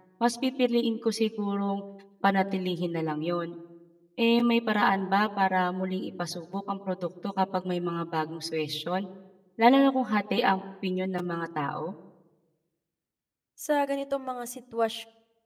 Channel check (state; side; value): identical; both; correlation 1.00